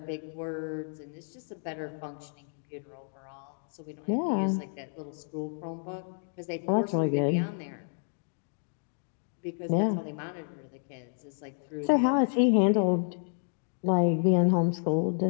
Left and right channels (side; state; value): right; silent; digital silence